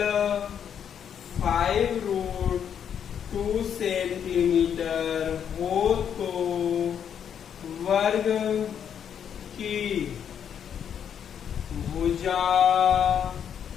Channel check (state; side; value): quieter; right; 8.4 dB